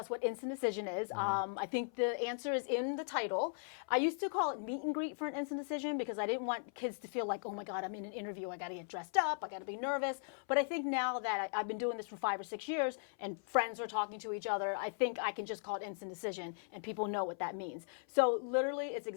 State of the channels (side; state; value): right; silent; 52 dB below the other